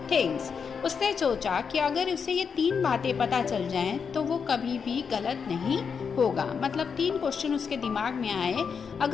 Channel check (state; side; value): quieter; right; 6.2 dB